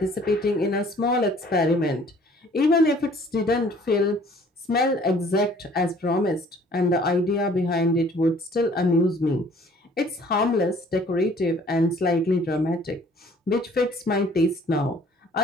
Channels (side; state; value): both; normal; correlation 0.55